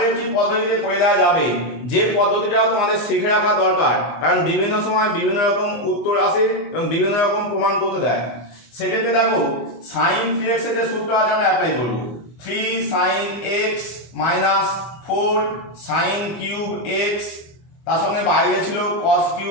একটি পদ্ধতিতে করে দেওয়া যাবে, যে পদ্ধতিটাও তোমাদের শিখে রাখা দরকার, কারণ বিভিন্ন সময় বিভিন্ন রকম উত্তর আসে এবং বিভিন্ন রকম প্রমাণ করতে দেয়। সেক্ষেত্রে দেখো sin 3x এর যে সূত্র আছে আমরা অ্যাপ্লাই করব, 3 sin x minus 4 sin cube x, তার সঙ্গে বাইরে ছিল cos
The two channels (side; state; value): right; late; 24 ms